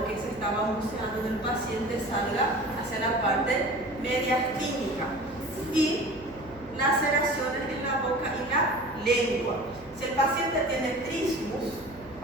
que se está balbuceando en el paciente salga hacia la parte mediastínica. Y laceraciones en la boca y la lengua. Si el paciente tiene trismus,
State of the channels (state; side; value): noise; right; hum, 21 dB below the sound